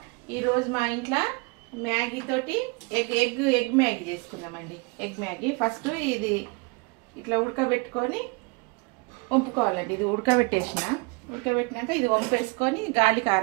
ఈరోజు మా ఇంట్లో మ్యాగీ తోటి ఎగ్ మ్యాగీ చేసుకుందామండి. ఎగ్ మ్యాగీ ఫస్ట్ ఇది ఇట్లా ఉడకబెట్టుకొని వంపుకోవాలండి. ఇది ఉడకబెట్టినాక ఇది వంపేసుకొని గాలికి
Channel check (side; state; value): left; quieter; 28.6 dB